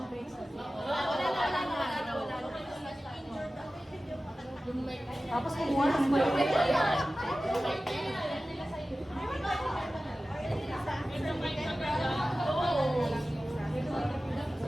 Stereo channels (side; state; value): both; normal; correlation 0.95